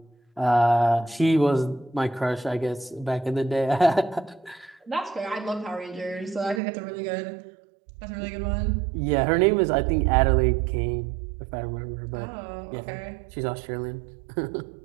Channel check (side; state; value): left; drops out; at 6.6 s